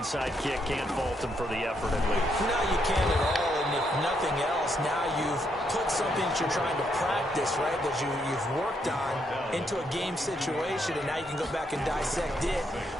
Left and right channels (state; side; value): normal; both; correlation 0.76